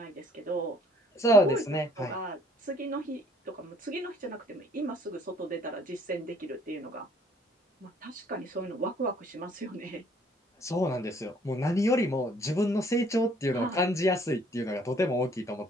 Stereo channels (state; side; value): normal; both; correlation 0.60